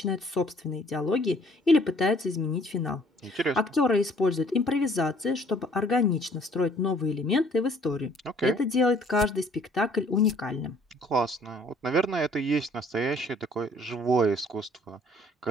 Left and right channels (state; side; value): normal; both; correlation 0.58